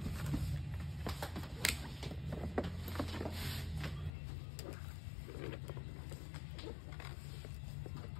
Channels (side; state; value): right; drops out; at 4.1 s